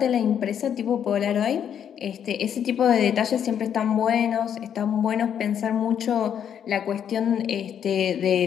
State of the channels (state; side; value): quieter; right; 8.8 dB